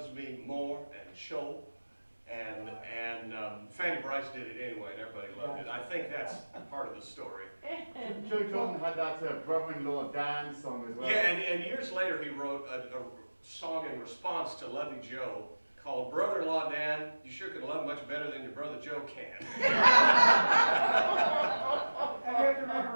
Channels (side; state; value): both; inverted; correlation -1.00